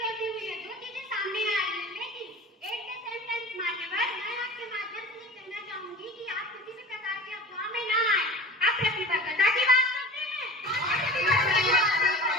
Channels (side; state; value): both; normal; correlation 0.38